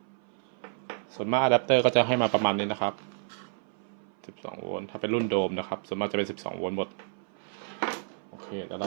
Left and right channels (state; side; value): silent; left; 56 dB below the other